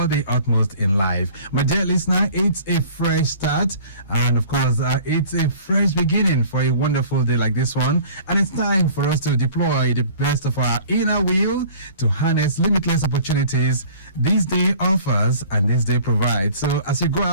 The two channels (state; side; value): inverted; both; correlation -0.47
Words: the utmost in life. My dear listener, it's a fresh start. And of course, it's a fresh beginning for a wonderful day like this one. And it's time for us to deploy the best of our inner wheel to harness limitless opportunities this day offers and this day provides. So as you go